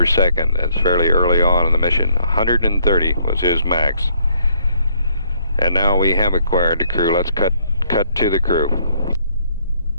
second. That's fairly early on in the mission. 130 was his max. And now we have acquired the crew. Let's cut to the crew.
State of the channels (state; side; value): inverted; both; correlation -0.68